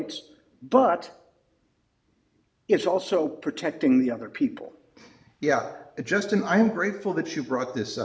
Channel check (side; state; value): both; identical; correlation 1.00